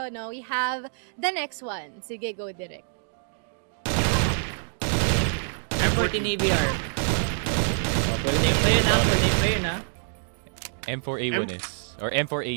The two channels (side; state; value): left; silent; 61 dB below the other